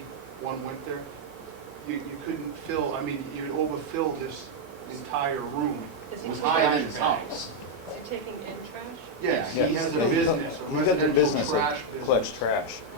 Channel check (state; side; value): normal; both; correlation -0.01